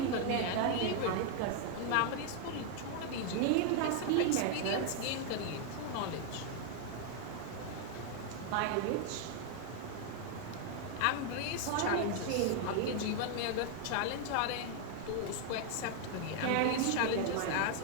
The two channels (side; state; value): both; different; correlation 0.00